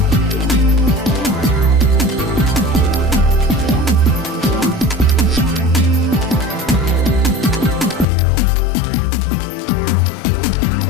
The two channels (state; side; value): drops out; right; at 8.1 s